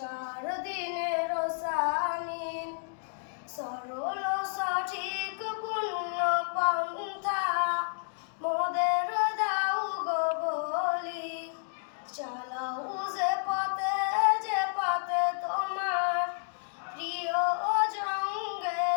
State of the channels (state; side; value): silent; right; digital silence